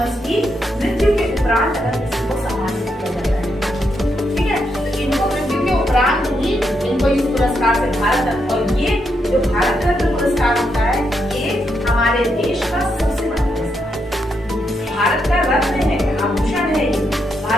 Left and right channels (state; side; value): normal; both; correlation 0.81